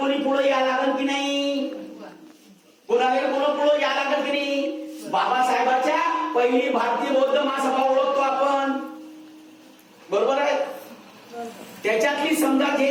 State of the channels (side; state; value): both; identical; correlation 1.00